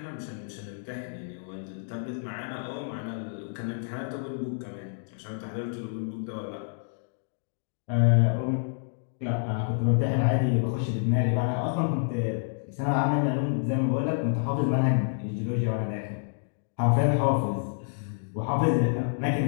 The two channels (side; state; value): right; silent; digital silence